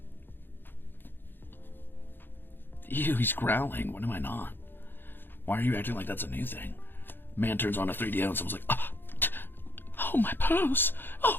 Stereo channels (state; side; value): late; right; 0.098 ms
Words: Ew, he's growling. What am I not? Why are you acting like that's a new thing? Man turns on a 3D and someone's like, oh, my purse.